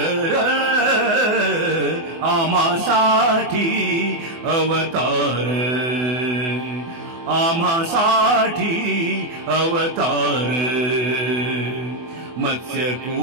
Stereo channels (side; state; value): left; late; 24 ms